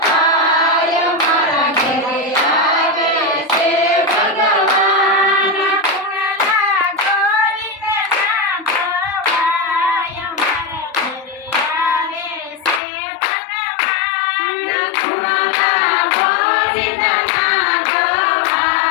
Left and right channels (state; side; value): drops out; right; at 12.8 s